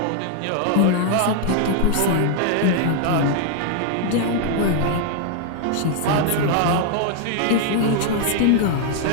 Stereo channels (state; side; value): different; both; correlation 0.00